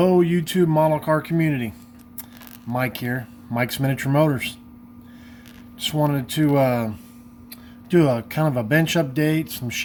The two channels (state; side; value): identical; both; correlation 1.00